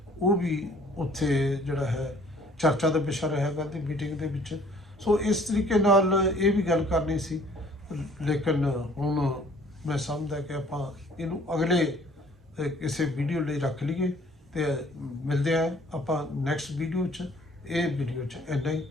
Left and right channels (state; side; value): normal; both; correlation 0.56